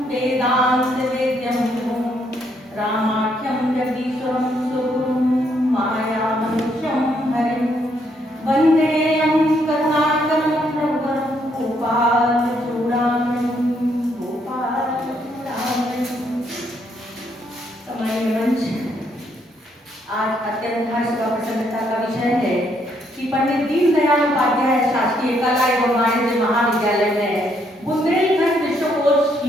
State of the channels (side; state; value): both; normal; correlation 0.72